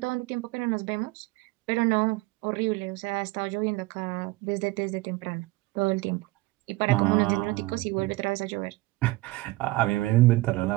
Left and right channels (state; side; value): quieter; left; 20.3 dB